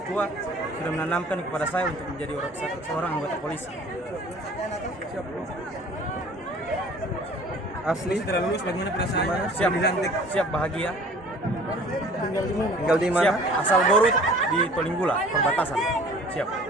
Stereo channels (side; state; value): both; normal; correlation 0.49